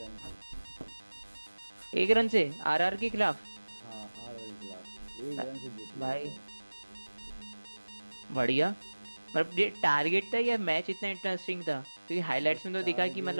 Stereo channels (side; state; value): both; inverted; correlation -1.00